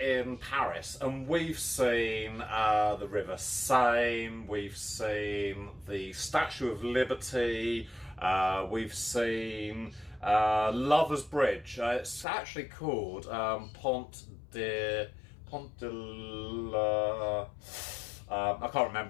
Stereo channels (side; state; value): right; drops out; at 12.2 s